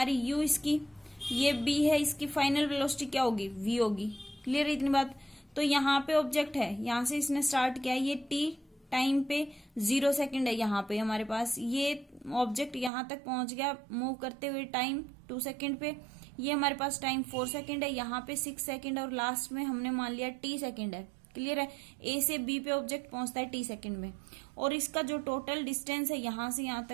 u इसकी, ये b है, इसकी फाइनल वेलोसिटी क्या होगी, v होगी। क्लियर इतनी बात। तो यहाँ पे ऑब्जेक्ट है, यहां से इसने स्टार्ट किया, ये t टाइम पे 0 सेकंड है यहाँ पे हमारे पास, ये ऑब्जेक्ट यहां तक पहुंच गया मूव करते हुए टाइम 2 सेकंड पे, ये हमारे पास टाइम 4 सेकंड है, यहाँ पे 6 सेकंड, और लास्ट में हमने मान लिया t सेकंड है। क्लियर है, ए से बी पे ऑब्जेक्ट पहुंचता है t सेकंड में, और इसका जो टोटल डिस्टेंस है यहां से यहां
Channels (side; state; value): left; drops out; at 12.9 s